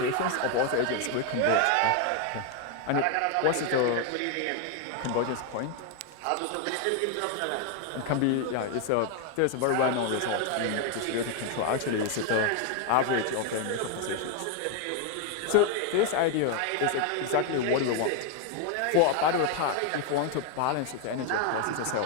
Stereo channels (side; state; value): both; different; correlation 0.01